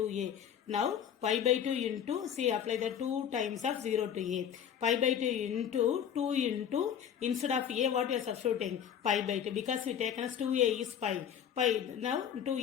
Now, pi by 2 into, see, apply the 2 times of 0 to a. Pi by 2 into, 2 into, instead of a, what we are substituting? Pi by 2. Because we taken as 2a is pi. Pi, now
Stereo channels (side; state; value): right; quieter; 8.8 dB